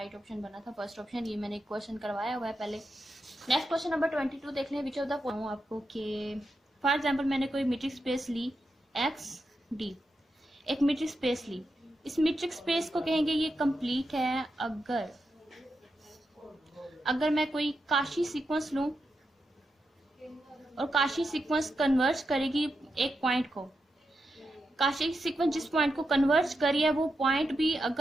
ऑप्शन बना था फर्स्ट ऑप्शन। ये मैंने क्वेश्चन करवाया हुआ है पहले। नेक्स्ट क्वेश्चन नंबर 22 देख लें। विच ऑफ द फॉलोइंग आपको कि फॉर एग्जाम्पल मैंने कोई मीट्रिक स्पेस ली एक्स डी, एक मीट्रिक स्पेस ली। इस मीट्रिक स्पेस को कहेंगे ये कंप्लीट है अगर मैं कोई काशी सीक्वेंस लूं और काशी सीक्वेंस कन्वर्ज करेगी एक पॉइंट को। काशी सीक्वेंस जिस पॉइंट को कन्वर्ज करी है वो पॉइंट भी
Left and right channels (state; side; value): normal; both; correlation 0.86